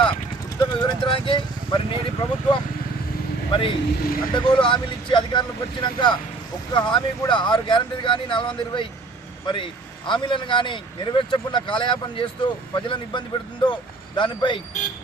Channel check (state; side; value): quieter; left; 3.4 dB